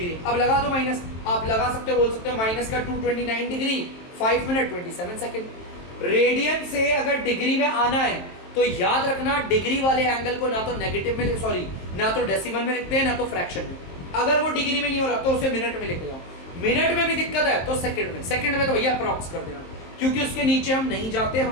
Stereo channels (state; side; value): late; right; 23 ms